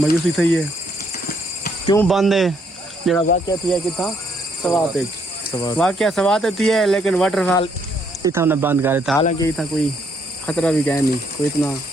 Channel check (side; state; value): both; normal; correlation 0.71